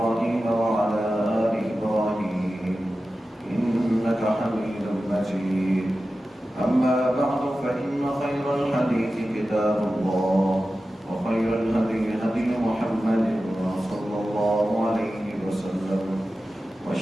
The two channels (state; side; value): normal; both; correlation 0.94